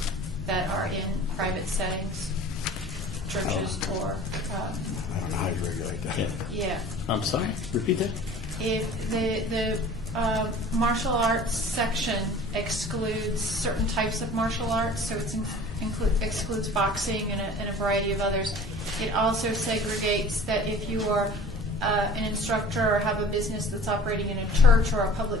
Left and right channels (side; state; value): both; normal; correlation 0.44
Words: that are in private settings, churches or... I don't know how you regulate that. Yeah. I'm sorry, repeat that? If the martial arts section excludes certain types of martial arts, so it excludes boxing and a variety of others. It also segregates that if you are an instructor or have a business that's operating in a church or a